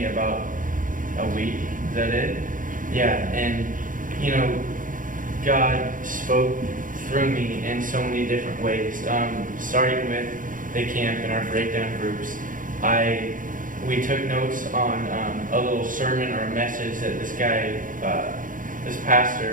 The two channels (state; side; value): late; left; 0.39 ms